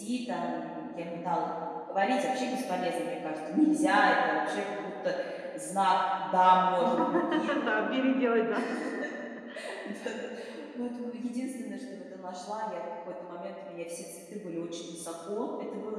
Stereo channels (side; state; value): both; identical; correlation 1.00